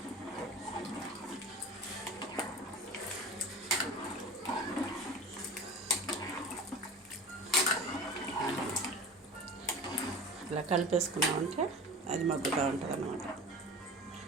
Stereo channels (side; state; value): both; normal; correlation 0.36